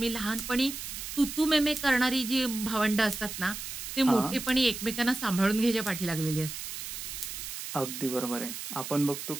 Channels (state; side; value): noise; right; hiss, 7 dB below the sound